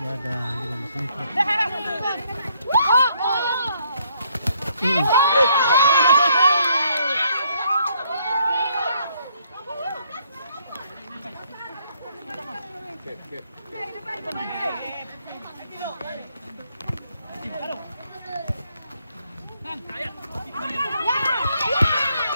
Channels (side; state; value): both; inverted; correlation -0.69